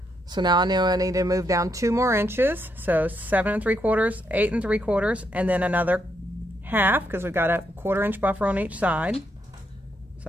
So now I know I need to move down 2 more inches. So 7 3/4, 8 3/4, and then another 1/2 because we've got a 1/4 inch buffer on each side. So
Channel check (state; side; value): normal; both; correlation 0.78